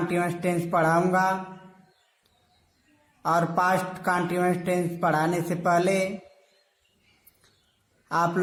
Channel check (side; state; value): both; identical; correlation 1.00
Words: टेंस पढ़ाऊंगा। और पास्ट कंटीन्यूअस टेंस पढ़ाने से पहले आप